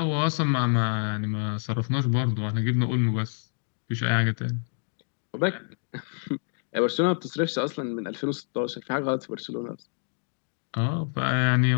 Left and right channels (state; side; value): silent; right; digital silence